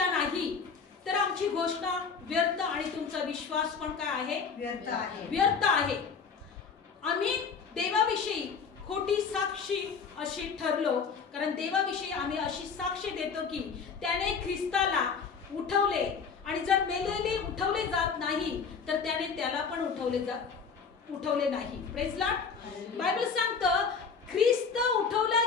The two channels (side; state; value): right; quieter; 5.7 dB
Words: नाही तर आमची घोषणा व्यर्थ आणि तुमचा विश्वास पण काय आहे? व्यर्थ आहे. आम्ही देवाविषयी खोटी साक्षी अशी ठरलो, कारण देवाविषयी आम्ही अशी साक्षी देतो की त्याने ख्रिस्ताला उठवले आणि जर मेलेले उठवले जात नाही तर त्याने त्याला पण उठवले नाही. Praise the Lord. बायबल सांगतं ख्रिस्त उठवला